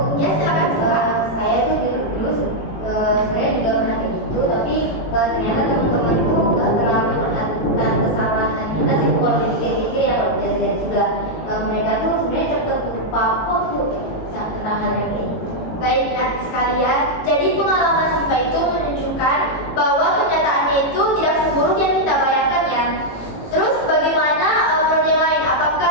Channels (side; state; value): right; late; 18 ms